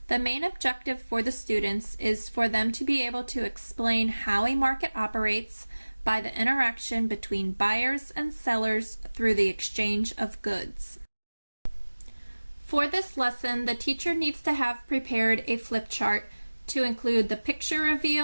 The main objective for the students is for them to be able to explain how a market operates by the interaction between buyers and sellers through the exchange of goods. For this lesson, the teacher needs to have prepared a flip chart to include the picture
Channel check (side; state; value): both; inverted; correlation -1.00